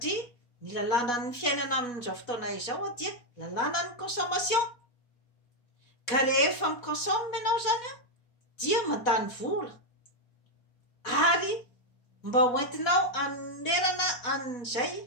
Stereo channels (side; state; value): right; late; 4.2 ms